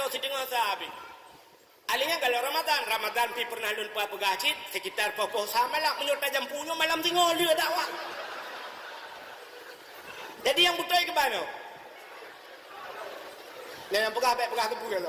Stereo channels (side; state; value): both; identical; correlation 1.00